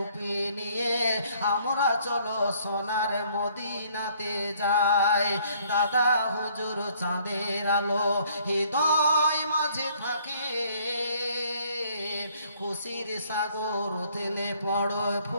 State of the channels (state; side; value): inverted; both; correlation -0.62